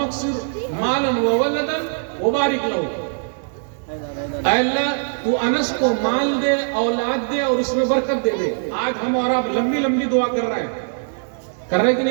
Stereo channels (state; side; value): silent; left; 65 dB below the other